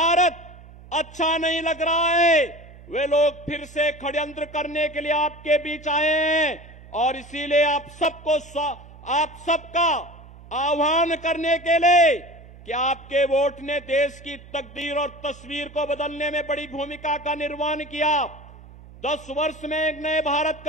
अच्छा नहीं लग रहा है, वे लोग फिर से षड्यंत्र करने के लिए आपके बीच आए हैं और इसीलिए आप सबका आह्वान करने के लिए कि आपके वोट ने देश की तकदीर और तस्वीर को बदलने में बड़ी भूमिका का निर्वहन किया। 10 वर्ष में एक नए भारत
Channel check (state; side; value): noise; right; hum, 20 dB below the sound